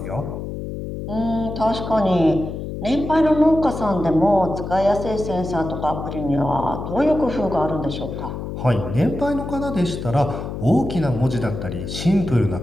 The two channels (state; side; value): noise; left; hum, 7 dB below the sound